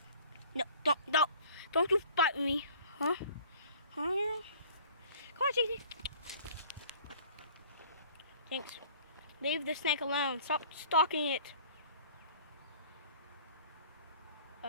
No, don't you bite me, huh? Huh? Come on, Jinxie. Jinx, leave the snake alone. Stop stalking it.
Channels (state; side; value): inverted; both; correlation -0.50